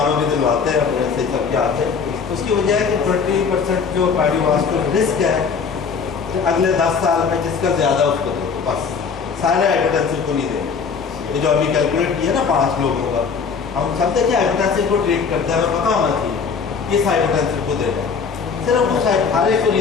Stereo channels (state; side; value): quieter; right; 5.7 dB